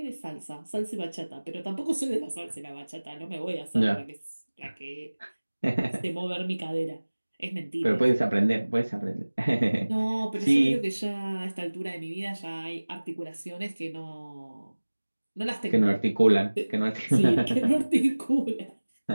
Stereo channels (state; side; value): inverted; both; correlation -1.00